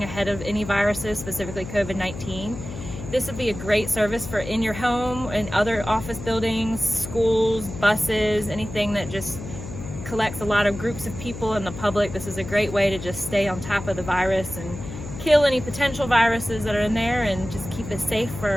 ahead of any viruses, specifically COVID-19. This would be a great service for in your home and other office buildings, schools, buses, anything that just collects a lot of groups of people in the public. This is a great way to just stay on top of the virus and kill any potential viruses that are in there and just keep it safe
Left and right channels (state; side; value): noise; left; hum, 10 dB below the sound